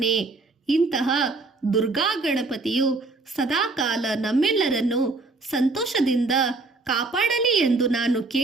ಇಂತಹ ದುರ್ಗಾ ಗಣಪತಿಯು ಸದಾಕಾಲ ನಮ್ಮೆಲ್ಲರನ್ನು ಸಂತೋಷದಿಂದ ಕಾಪಾಡಲಿ ಎಂದು ನಾನು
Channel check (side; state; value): left; quieter; 3.5 dB